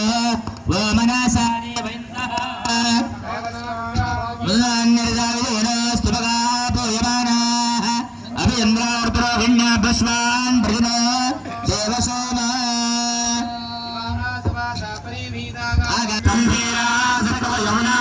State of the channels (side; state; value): both; identical; correlation 1.00